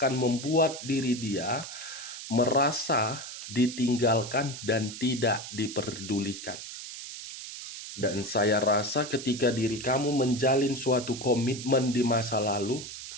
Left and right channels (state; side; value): noise; right; hiss, 10 dB below the sound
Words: membuat diri dia merasa ditinggalkan dan tidak diperdulikan. Dan saya rasa ketika diri kamu menjalin suatu komitmen di masa lalu,